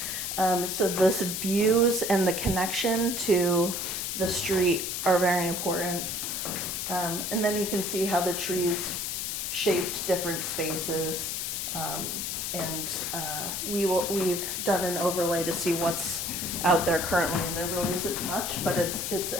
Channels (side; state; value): left; noise; hiss, 3 dB below the sound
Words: So those views and the connection to the street are very important. And then you can see how the trees shaped different spaces. We've done an overlay to see what's out there currently, and there really isn't much, but it's